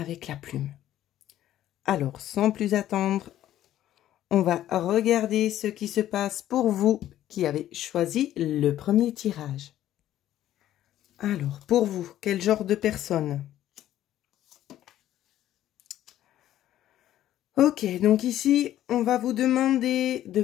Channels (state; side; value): quieter; right; 12.7 dB